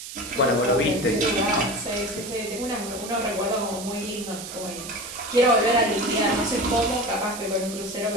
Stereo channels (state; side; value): noise; right; hiss, 11 dB below the sound